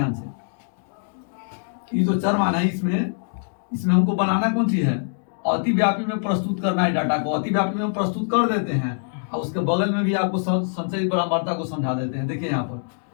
से, ये जो चरमान है इसमें हमको बनाना कौन सी है? अतिव्यापी में प्रस्तुत करना है डाटा को। अतिव्यापी में प्रस्तुत कर देते हैं और उसके बगल में भी आपको संचय बारंबारता को समझा देते हैं। देखिए यहाँ पर,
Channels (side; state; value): right; silent; digital silence